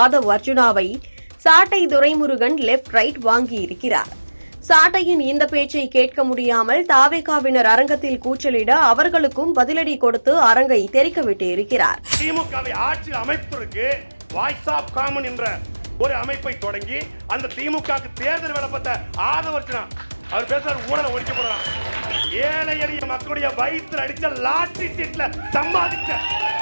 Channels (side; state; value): both; inverted; correlation -1.00